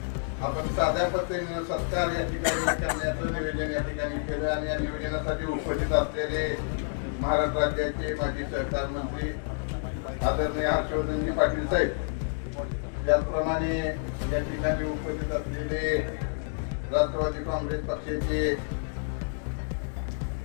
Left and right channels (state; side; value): silent; right; digital silence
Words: आपण साध्या पद्धतीने सत्कार या ठिकाणी करण्याचं निवेदन या ठिकाणी केलं आणि या निवेदनासाठी उपस्थित असलेले महाराष्ट्र राज्याचे माजी सहकार मंत्री आदरणीय हर्षवर्धनजी पाटील साहेब, त्याचप्रमाणे या ठिकाणी उपस्थित असलेले राष्ट्रवादी काँग्रेस पक्षाचे